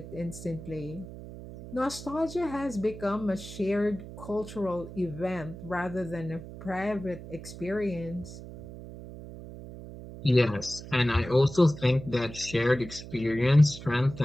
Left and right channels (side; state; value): right; noise; hum, 13 dB below the sound